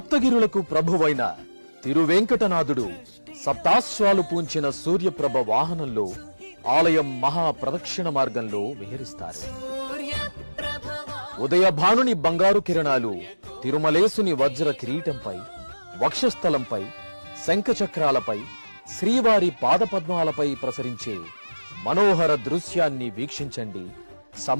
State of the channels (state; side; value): inverted; both; correlation -1.00